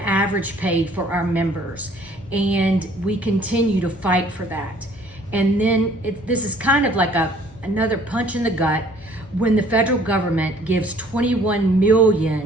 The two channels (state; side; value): normal; both; correlation 0.57